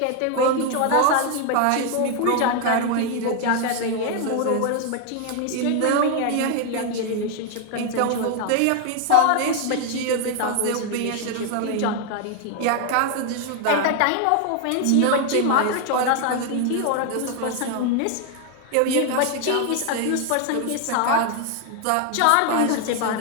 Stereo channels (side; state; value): both; different; correlation 0.01